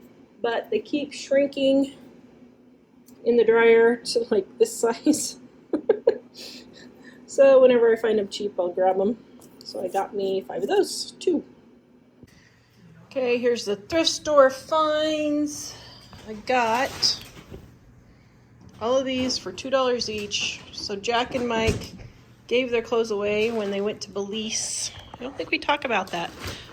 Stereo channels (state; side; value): identical; both; correlation 1.00